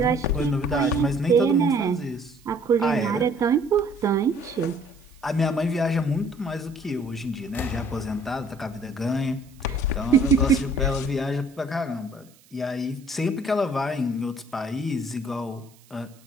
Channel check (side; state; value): right; noise; hiss, 29 dB below the sound